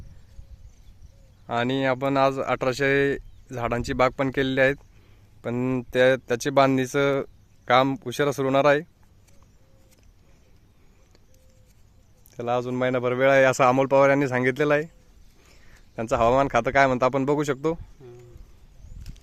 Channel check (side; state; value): both; identical; correlation 1.00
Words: आणि आपण आज 1800 झाडांची बाग पण केलेली आहेत, पण त्याची बांधणीचं काम उशिरा सुरू होणार आहे. त्याला अजून महिनाभर वेळ आहे असं अमोल पवार यांनी सांगितलेलं आहे. त्यांचं हवामान खातं काय म्हणतं आपण बघू शकतो.